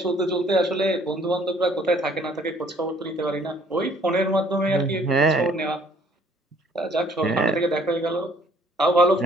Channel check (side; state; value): both; normal; correlation 0.60